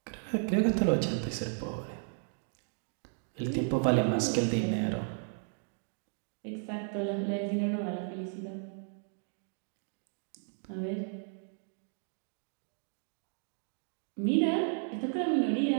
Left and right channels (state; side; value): silent; left; 55 dB below the other